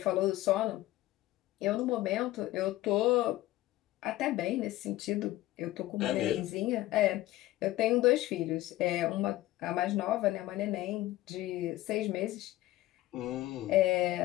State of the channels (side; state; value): right; quieter; 16.4 dB